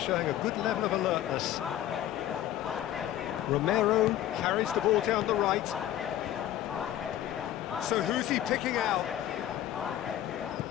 showing a good level of alertness. Romero carries the ball down the right. So who's he picking out?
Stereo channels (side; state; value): right; quieter; 12.4 dB